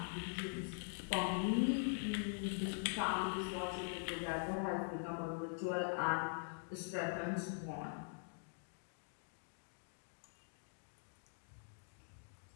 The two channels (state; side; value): silent; right; digital silence